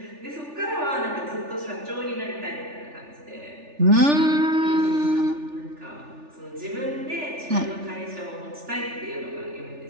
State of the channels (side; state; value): left; late; 3.4 ms